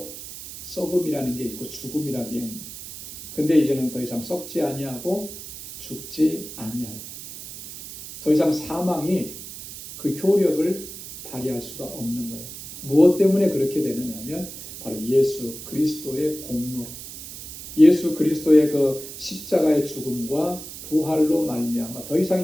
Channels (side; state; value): right; noise; hiss, 12 dB below the sound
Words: 썩음이라는 게 있고 죽음이라는 게 있습니다. 근데 이제는 더 이상 썩지 아니하고 죽지 아니하리라. 더 이상 사망이 그 효력을 발휘할 수가 없는 거예요. 무엇 때문에 그렇게 되느냐면 바로 예수 그리스도의 공로로, 예수 그리스도의 그 십자가의 죽음과 부활로 말미암아 더